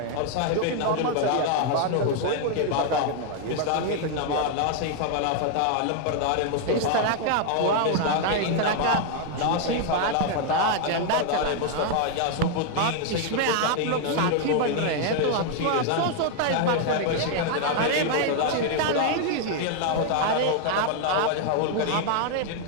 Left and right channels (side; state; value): both; different; correlation 0.00